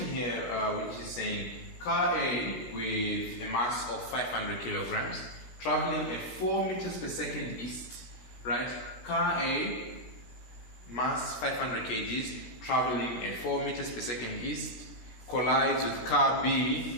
here which is saying car A with a mass of 500 kilograms traveling at 4 meters per second east, right? Car A, mass 500 kgs, traveling at 4 meters per second east, collides with car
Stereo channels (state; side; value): late; right; 16 ms